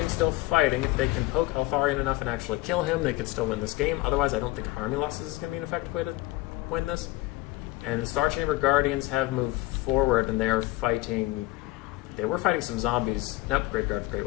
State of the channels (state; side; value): quieter; right; 19.2 dB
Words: still fighting. If they can poke Altharian enough and actually kill him, they could still win this game. Otherwise, I don't think army losses is going to be an effective way to win this. And the Star Chamber Guardians have moved forward, and they are fighting... They were fighting some zombies. Nope, Graveguard of Great